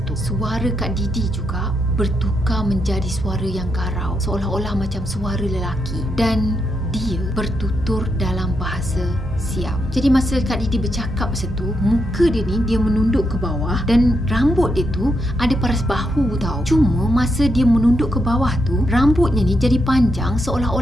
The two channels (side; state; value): both; normal; correlation 0.81